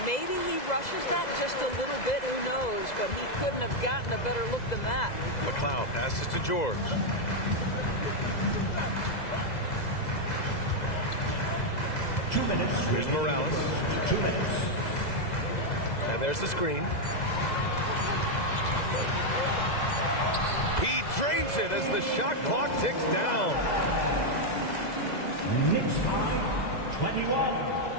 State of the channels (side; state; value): right; late; 2.0 ms